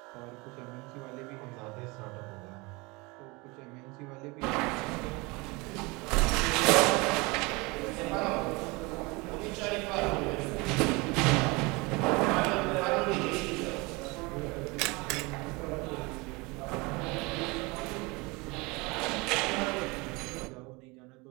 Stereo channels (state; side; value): quieter; left; 25.7 dB